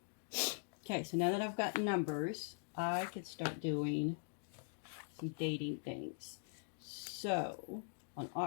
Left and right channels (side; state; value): right; silent; digital silence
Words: Okay, so now that I've got numbers, I can start doing some dating things. So, on